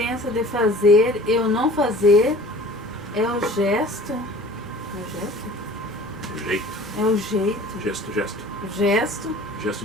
de fazer e o não fazer é o gesto. É o gesto? O jeito. É o jeito. Gesto. Gesto. Gesto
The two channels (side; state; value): both; normal; correlation 0.46